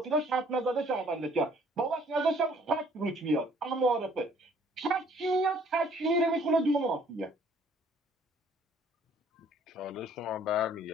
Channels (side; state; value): both; normal; correlation 0.59